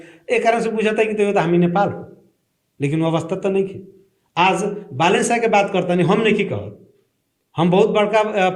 एक कारण से बुझाता कि तो हमी नेपाल हो, लेकिन वो अवस्था तो नहीं खे। आज बालन शाह के बात करता नहीं, हम नहीं की कहत, हम बहुत बड़का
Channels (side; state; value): both; identical; correlation 1.00